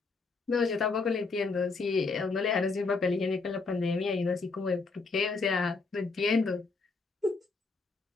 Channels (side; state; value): right; quieter; 4.1 dB